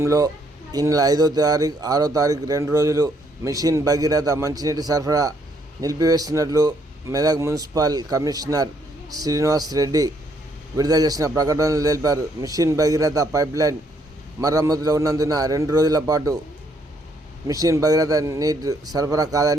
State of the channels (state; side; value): normal; both; correlation 0.70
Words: ఈ నెల 5వ తారీఖు 6వ తారీఖు 2 రోజులు మిషన్ భగీరథ మంచినీటి సరఫరా నిలిపివేస్తున్నట్లు మెదక్ మున్సిపల్ కమిషనర్ శ్రీనివాస్ రెడ్డి విడుదల చేసిన ప్రకటనలు తెలిపారు. మిషన్ భగీరథ పైప్లైన్ మరమ్మతులో ఉన్నందున 2 రోజుల పాటు మిషన్ భగీరథ నీటి సరఫరా